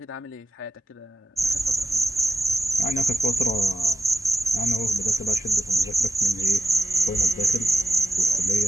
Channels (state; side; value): normal; both; correlation 0.89